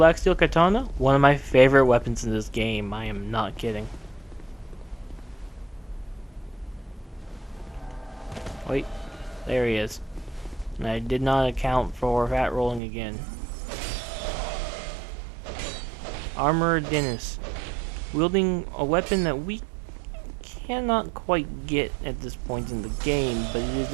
Steel Katana, one of my favorite weapons in this game. I am not kidding. Wait, there he is. And I did not account for fat rolling again. Armorer Dennis, wielding a weapon that we cannot quite get at this point in the game, but it is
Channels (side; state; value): left; drops out; at 12.8 s